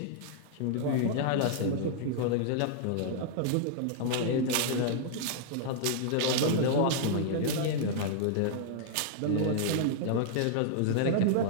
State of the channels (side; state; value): both; different; correlation -0.01